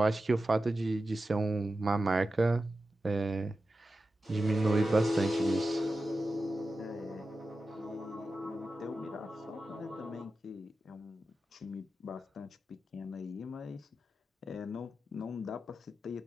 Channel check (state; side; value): normal; both; correlation 0.92